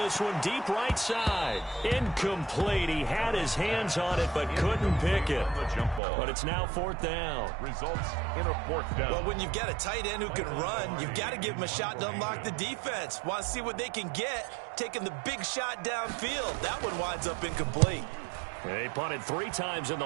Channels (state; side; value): drops out; left; at 6.0 s